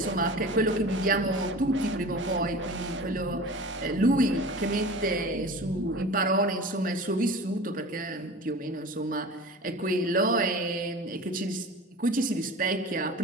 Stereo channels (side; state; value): both; normal; correlation 0.37